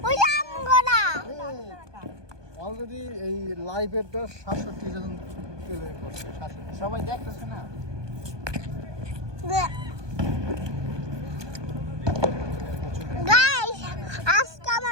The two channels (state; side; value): late; left; 1.2 ms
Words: ওই রাম কথা অলরেডি এই লাইভেরটা 67 জন প্লে করছে 67 সবাই দেখতেছে না। গাইস আজকে